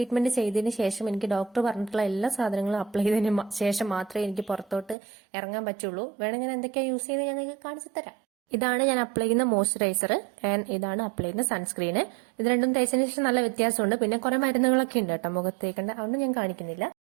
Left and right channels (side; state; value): left; drops out; at 5.0 s